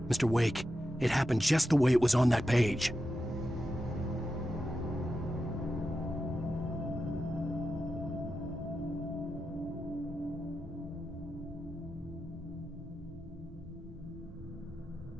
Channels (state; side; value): normal; both; correlation 0.89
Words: "Mr. Wake, it happened just the way it was on that page."